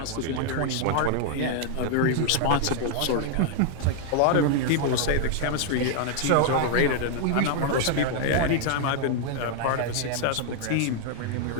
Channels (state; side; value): different; both; correlation 0.00